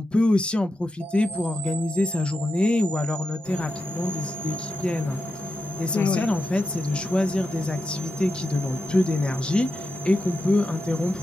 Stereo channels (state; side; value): normal; both; correlation 0.88